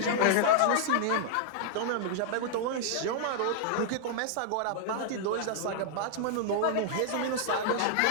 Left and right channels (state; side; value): different; both; correlation -0.01